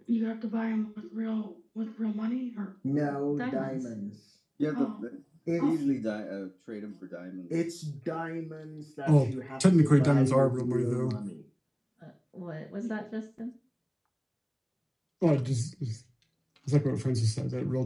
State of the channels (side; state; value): both; identical; correlation 1.00